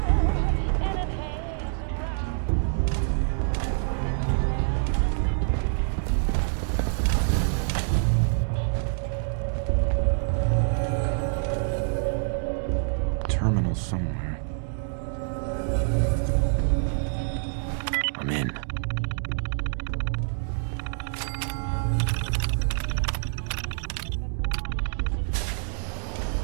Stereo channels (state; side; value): silent; left; digital silence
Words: Terminal somewhere. I'm in.